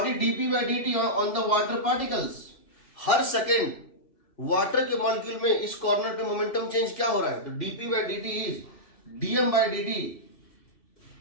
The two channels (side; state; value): right; late; 2.6 ms